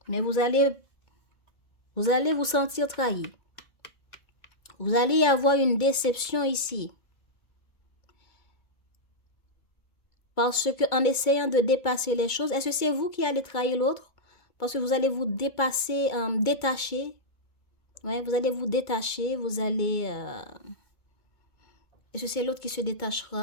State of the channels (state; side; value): late; right; 2.2 ms